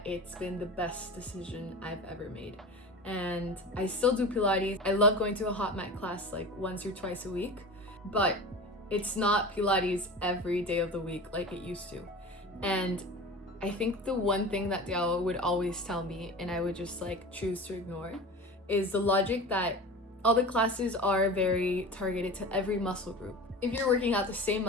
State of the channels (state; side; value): normal; both; correlation 0.33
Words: it's been the best decision I've ever made. And I still do Pilates. I love going to a hot mat class like once or twice a week, but it's not Pilates every day of the week like it used to. And I think the one thing that Tiago would always tell me, and I would just like choose to ignore, is the logic that all the classes are very targeted to every muscle group. If you're working out the same